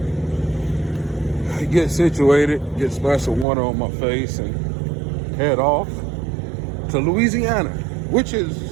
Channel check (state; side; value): drops out; left; at 3.5 s